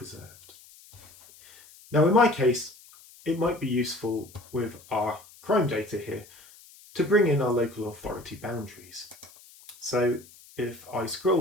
Now in my case, it might be useful with our crime data here to bring in our local authority boundaries. So if I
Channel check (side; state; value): left; noise; hiss, 23 dB below the sound